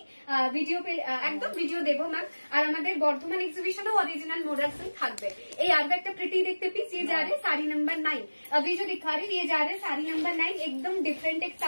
ভিডিও একদম ভিডিও দেবো ম্যাম। আর আমাদের বর্ধমান এক্সিবিশনেও অরিজিনাল মডেল স্টিল থাকবে। এই আর একটা প্রিটি দেখতে পিস, ये जा रहे साड़ी नंबर 9। अभी जो दिखा रही ये जा रहे साड़ी नंबर 9, एकदम डिफरेंट एक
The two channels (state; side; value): inverted; both; correlation -1.00